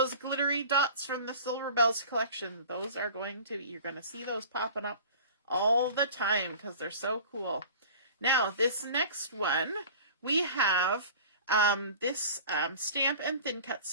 glittery dots from the Silver Bells collection. Those are you're going to see those popping up all the time because they're so cool. Now, this next one, we have this stamp and thin cut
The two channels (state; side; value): inverted; both; correlation -0.41